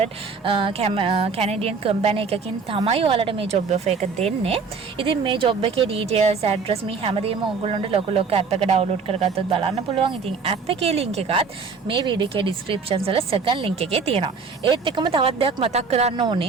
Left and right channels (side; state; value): left; quieter; 5.0 dB